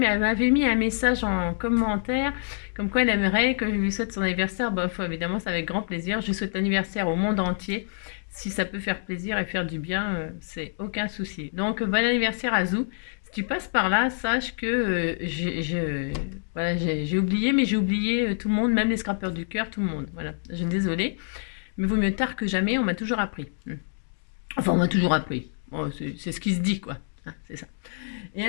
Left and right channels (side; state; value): right; silent; digital silence